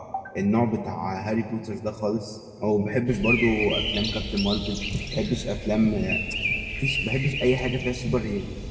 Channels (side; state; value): both; identical; correlation 1.00